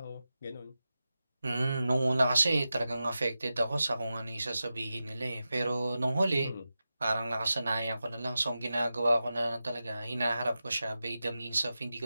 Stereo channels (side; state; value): both; inverted; correlation -0.92